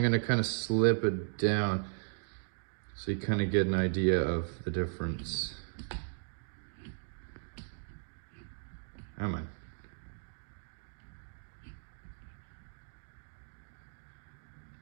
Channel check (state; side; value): silent; left; digital silence